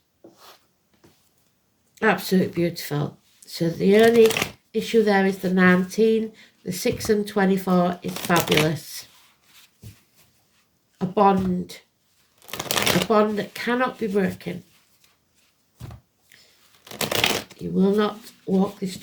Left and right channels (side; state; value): both; identical; correlation 1.00